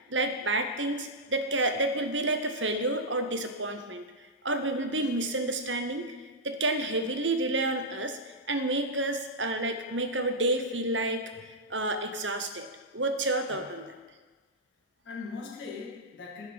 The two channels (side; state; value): both; normal; correlation -0.08